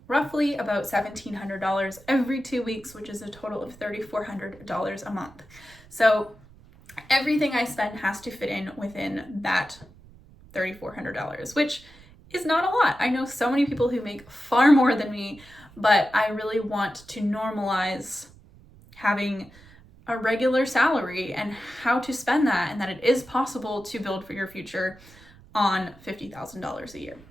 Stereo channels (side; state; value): right; noise; rumble, 23 dB below the sound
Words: roughly about $1,700 every 2 weeks, which is a total of $3,400 a month. So everything I spend has to fit in within that $3,400, which is not a lot. I know so many people who make far more than me, but I really want to normalize having a regular salary and how to spend that, and that it is possible to build for your future on $50,000 a year.